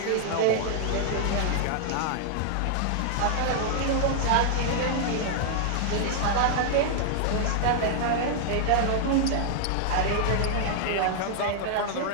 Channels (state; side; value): different; both; correlation -0.01